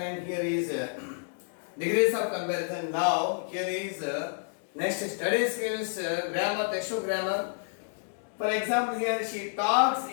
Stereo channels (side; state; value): right; silent; digital silence